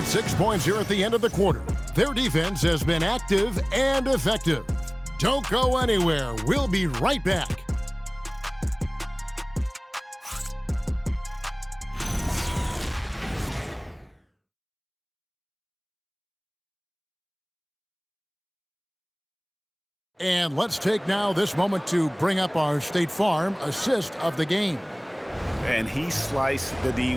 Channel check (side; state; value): both; identical; correlation 1.00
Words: 6 points here at the end of the quarter. Their defense has been active and effective. Don't go anywhere. We'll be right back. And let's take now this moment to bring up our State Farm assist of the game. And he sliced the D